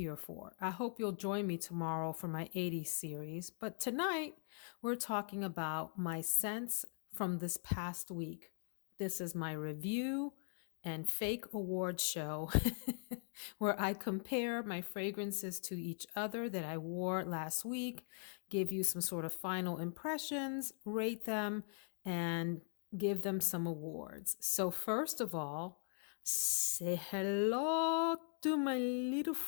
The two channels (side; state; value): right; silent; 50 dB below the other